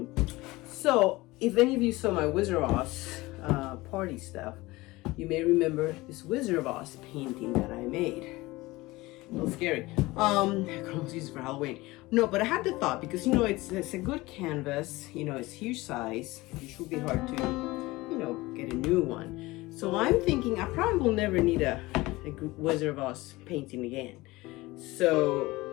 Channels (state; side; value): quieter; right; 20.5 dB